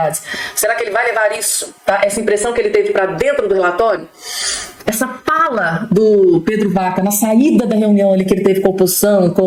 Será que ele vai levar isso, tá, essa impressão que ele teve, para dentro do relatório? Essa fala do Pedro Vaca na saída da reunião ali que ele teve com a oposição,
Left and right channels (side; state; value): both; identical; correlation 1.00